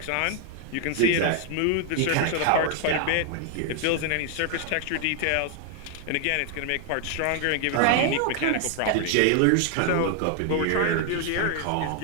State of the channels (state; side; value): different; both; correlation 0.00